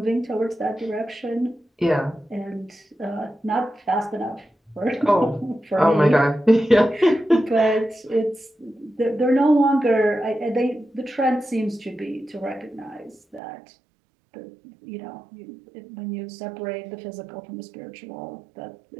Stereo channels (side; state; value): left; drops out; at 13.4 s